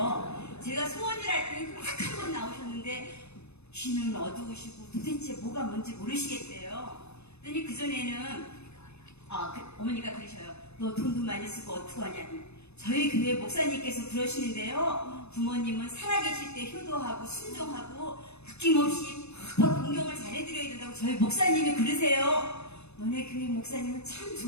제가 소원을 할 때 딱 한 번 나오셨는데 귀는 어두우시고 도대체 뭐가 뭔지 모르시겠대요. 그러니 그전에는 어머니가 그러셔요. 너 돈도 많이 쓰고 어떡하냐니. 저희 교회 목사님께서 그러시는데요. 부모님은 살아계실 때 효도하고 순종하고 아낌없이 막 공경을 잘해드려야 된다고 저희 목사님이 그러세요. 너네 교회 목사님은 참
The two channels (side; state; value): right; late; 0.80 ms